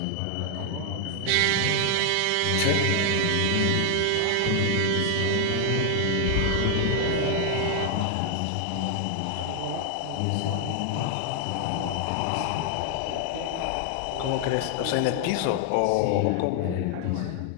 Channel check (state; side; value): different; both; correlation 0.00